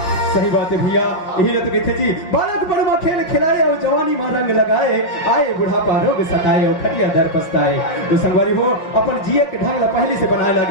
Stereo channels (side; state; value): right; late; 5.6 ms